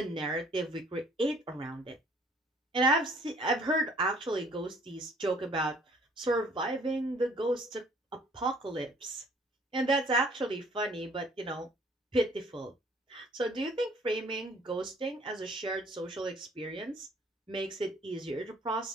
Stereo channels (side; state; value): both; normal; correlation 0.58